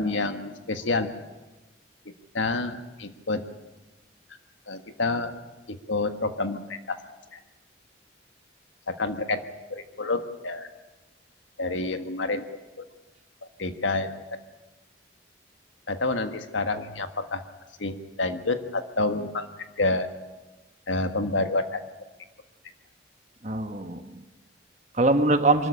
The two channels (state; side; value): normal; both; correlation -0.12